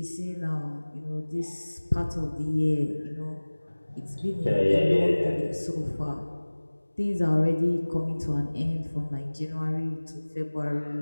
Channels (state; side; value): inverted; both; correlation -1.00